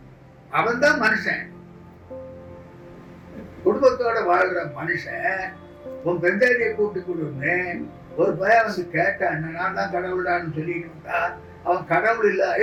அவன் தான் மனுஷன். குடும்பத்தோட வாழ்ற மனுஷன் உன் பெஞ்சாதியை கூப்பிட்டு கொடுன்னு ஒரு பையன் கேட்டான். நான் தான் கடவுளான்னு சொல்லிட்டு இருந்தா அவன் கடவுள் இல்ல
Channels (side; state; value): both; identical; correlation 1.00